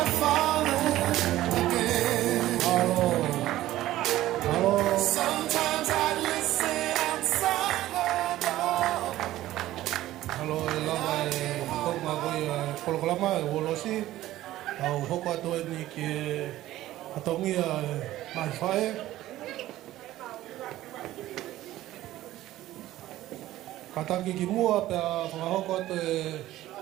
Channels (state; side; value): quieter; left; 15.0 dB